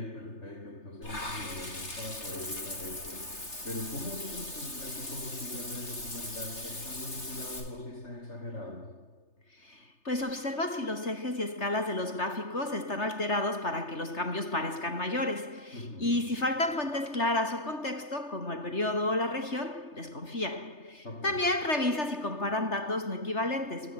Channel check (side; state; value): right; late; 3.3 ms